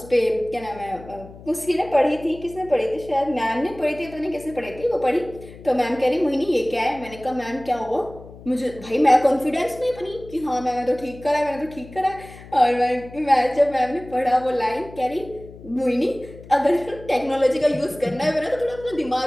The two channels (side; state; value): left; noise; hum, 18 dB below the sound